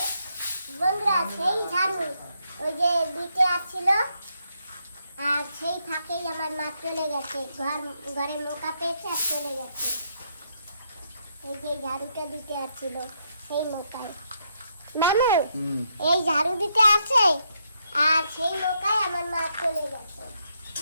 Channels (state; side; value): inverted; both; correlation -0.77